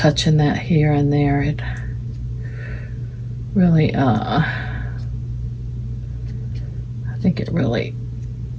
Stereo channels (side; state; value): both; identical; correlation 1.00